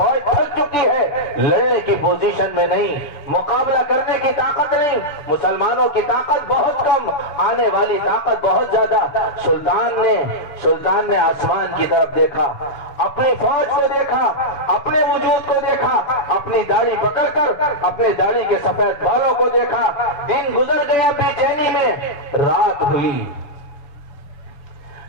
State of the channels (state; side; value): late; right; 6.9 ms